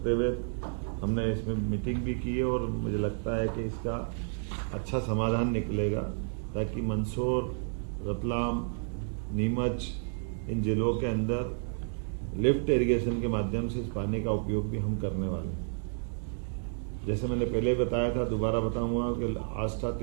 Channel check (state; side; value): silent; left; 57 dB below the other